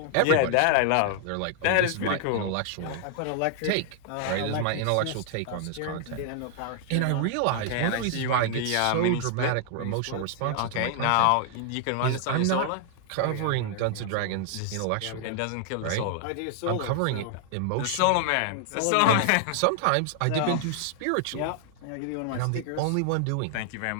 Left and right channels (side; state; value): both; different; correlation 0.00